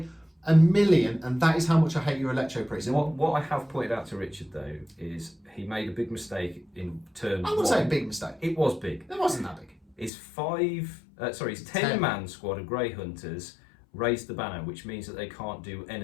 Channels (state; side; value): drops out; right; at 10.1 s